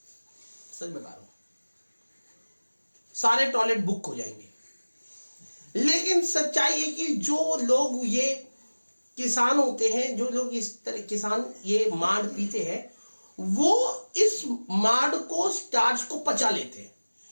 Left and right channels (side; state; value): both; inverted; correlation -1.00